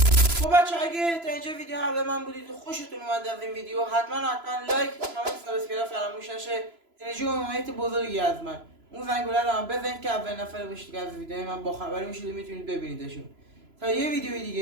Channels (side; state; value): left; late; 3.0 ms